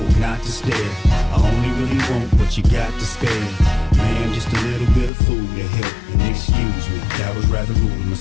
not to stare. I only really want what you got to spare. Man, just a little bit of food to help. And excuse me, that was rather rude of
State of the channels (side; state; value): right; drops out; at 5.1 s